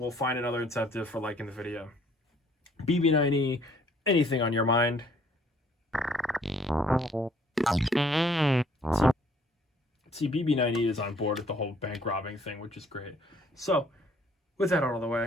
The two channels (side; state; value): both; normal; correlation 0.61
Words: find another incentive for liking the video. BB90, anything on your mind? See, BB90 is on board with the whole bank robbing thing, which is great. So, with that out of the